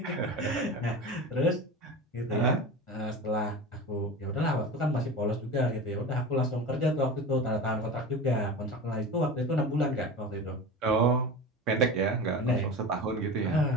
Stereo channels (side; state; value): both; normal; correlation 0.30